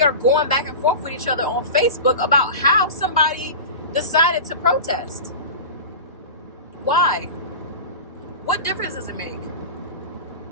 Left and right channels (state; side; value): inverted; both; correlation -0.31